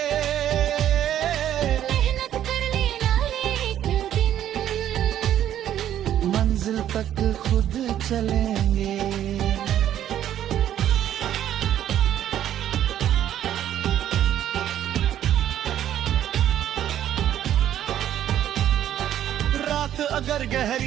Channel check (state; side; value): quieter; left; 11.2 dB